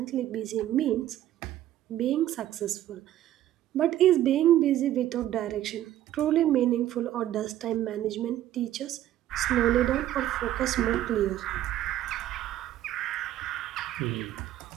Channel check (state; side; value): quieter; left; 13.0 dB